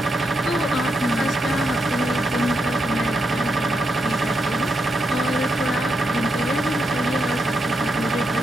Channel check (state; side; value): normal; both; correlation 0.82